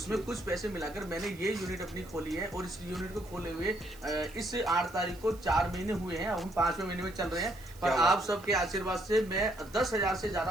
कुछ पैसे मिलाकर मैंने ये यूनिट अपनी खोली है, और इस यूनिट को खोले हुए इस 8 तारीख को 4 महीने हुए हैं। हम 5वें महीने में चल रहे हैं, पर आप सबके आशीर्वाद से मैं 10,000 से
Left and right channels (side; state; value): right; noise; hiss, 22 dB below the sound